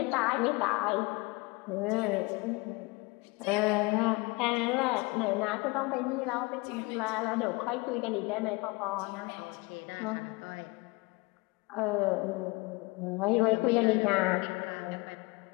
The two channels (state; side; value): quieter; right; 25.8 dB